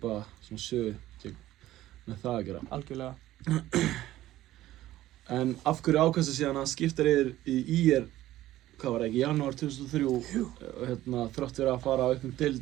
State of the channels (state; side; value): quieter; left; 14.8 dB